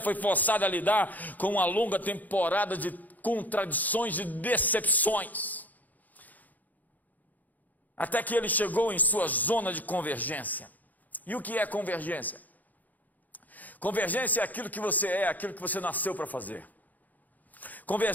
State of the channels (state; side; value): late; right; 0.081 ms